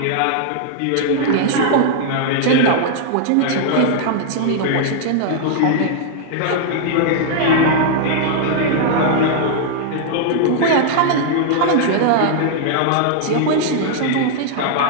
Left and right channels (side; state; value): both; different; correlation -0.01